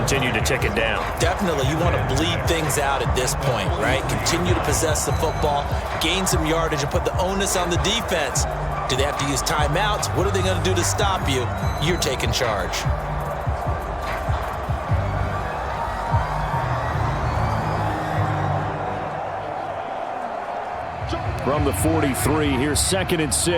to tick it down. Definitely. You want to bleed things out at this point, right? Continue to possess the football, gain some yardage, and put the onus on the defense. Do they have to use timeouts? What are they going to do to stop you? You're taking charge. From the 43, here's 2nd and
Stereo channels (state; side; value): identical; both; correlation 1.00